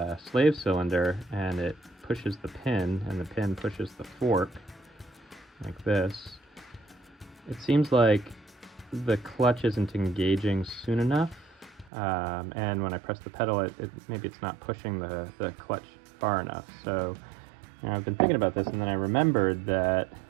slave cylinder and it pushes the pin and the pin pushes the fork like this, it seems like the clutch isn't engaging soon enough, and when I press the pedal maybe it's not pushing the clutch far enough. So I've been thinking about this, and then I remembered that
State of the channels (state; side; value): drops out; left; at 11.9 s